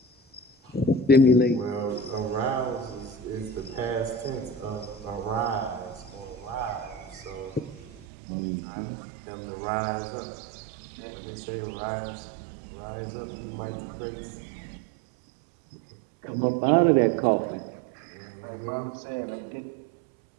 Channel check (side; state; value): left; drops out; at 8.1 s